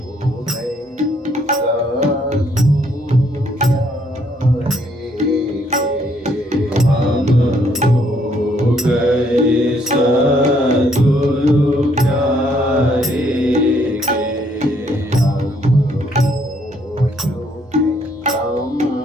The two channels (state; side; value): normal; both; correlation 0.68